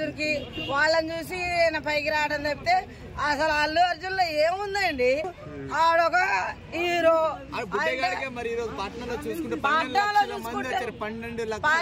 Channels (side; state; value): both; identical; correlation 1.00